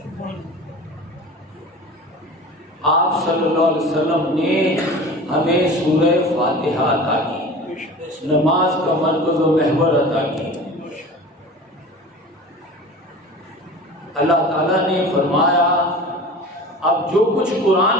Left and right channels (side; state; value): both; normal; correlation 0.38